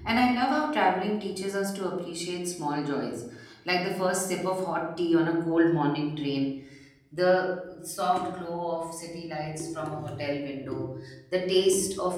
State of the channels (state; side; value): identical; both; correlation 1.00